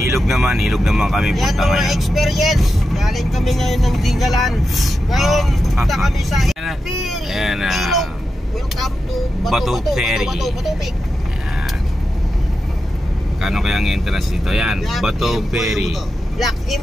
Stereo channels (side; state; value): both; normal; correlation 0.89